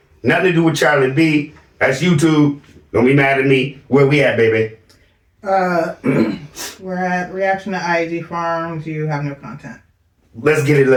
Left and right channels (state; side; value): identical; both; correlation 1.00